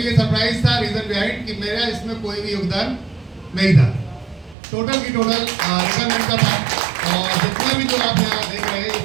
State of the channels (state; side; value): drops out; left; at 4.5 s